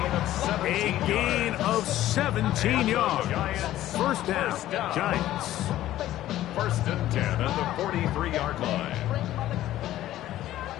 A gain of 17 yards. First down, Giants. 1st and 10 at the 43-yard line.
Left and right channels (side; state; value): right; quieter; 14.0 dB